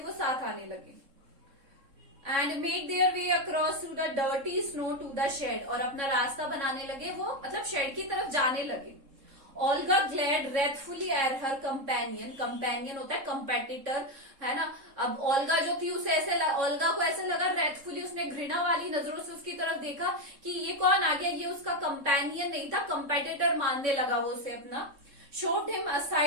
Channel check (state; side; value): late; left; 3.7 ms